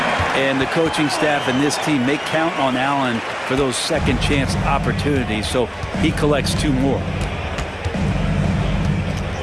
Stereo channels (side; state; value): both; identical; correlation 1.00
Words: And the coaching staff and this team, they count on Allen for those second chance opportunities, so he collects 2 more.